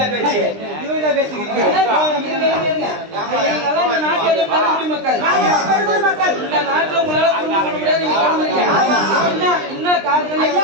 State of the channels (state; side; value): late; left; 20 ms